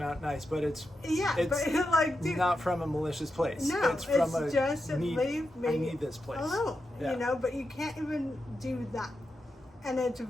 out nice, but it's but like, dude, not from a malicious place. No, it's from just leave me I need this place alone. Yeah. But you can't even do that, and it's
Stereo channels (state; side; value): normal; both; correlation 0.87